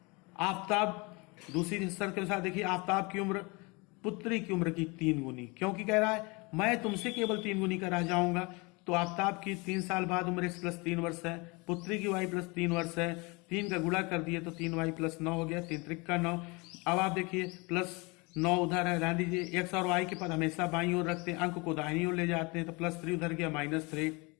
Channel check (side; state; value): right; quieter; 27.5 dB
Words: आफताब दूसरी शर्त के अनुसार देखिए आफताब की उम्र पुत्री की उम्र की 3 गुनी, क्योंकि कह रहा है मैं तुमसे केवल 3 गुनी का रह जाऊंगा। तो आफताब की 3 साल बाद उम्र x प्लस 3 वर्ष है, पुत्री की y प्लस 3 वर्ष है। 3 का गुणा कर दिए तो 3y प्लस 9 हो गया, 3 त्रिक का 9। अब आप देखिए प्लस 9 उधर है, रहने दीजिए। x और y के पद हमेशा बाईं ओर रखते हैं, अंक को दाहिनी ओर ले जाते हैं। तो +3 उधर गया, -3।